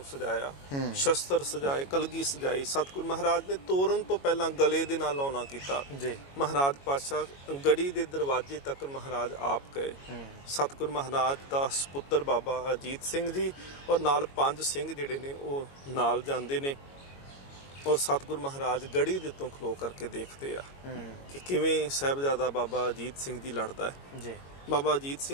ਸਜਾਇਆ ਸ਼ਸਤਰ ਸਜਾਏ ਕਲਗੀ ਸਜਾਈ ਸਤਿਗੁਰੂ ਮਹਾਰਾਜ ਨੇ ਤੋਰਨ ਤੋਂ ਪਹਿਲਾਂ ਗਲੇ ਦੇ ਨਾਲ ਲਾਉਣਾ ਕੀਤਾ जी ਮਹਾਰਾਜ ਪਾਤਸ਼ਾਹ ਗੜੀ ਦੇ ਦਰਵਾਜ਼ੇ ਤੱਕ ਮਹਾਰਾਜ ਆਪ ਗਏ ਸਤਿਗੁਰੂ ਮਹਾਰਾਜ ਦਾ ਸੁਪੁੱਤਰ ਬਾਬਾ ਅਜੀਤ ਸਿੰਘ ਜੀ ਔਰ ਨਾਲ 5 ਸਿੰਘ ਜਿਹੜੇ ਨੇ ਉਹ ਨਾਲ ਜਾਂਦੇ ਨੇ ਔਰ ਸਤਿਗੁਰੂ ਮਹਾਰਾਜ ਗੜੀ ਦੇ ਉੱਤੋਂ ਖਲੋ ਕਰਕੇ ਦੇਖਦੇ ਆ ਕਿ ਕਿਵੇਂ ਸਾਹਿਬਜ਼ਾਦਾ ਬਾਬਾ ਅਜੀਤ ਸਿੰਘ ਜੀ ਲੜਦਾ ਹੈ जी ਬਾਬਾ ਅਜੀਤ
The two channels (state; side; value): late; right; 22 ms